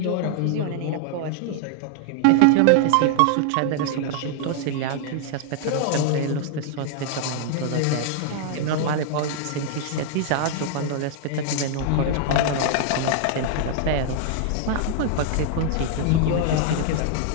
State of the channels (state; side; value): different; both; correlation 0.00